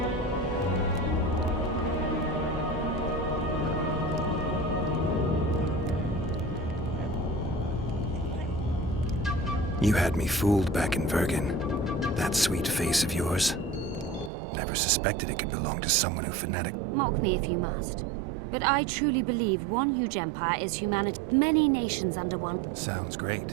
You had me fooled back in Vergen. That sweet face of yours. Never suspected it could belong to someone who fanatic. Mock me if you must. But I truly believe one huge empire is humanity. Many nations under one. Sounds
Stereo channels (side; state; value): left; drops out; at 14.3 s